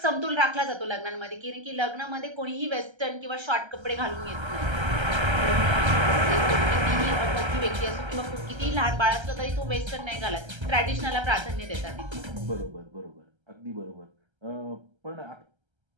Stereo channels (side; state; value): left; late; 1.3 ms